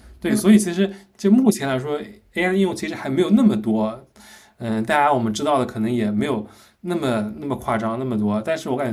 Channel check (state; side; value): identical; both; correlation 1.00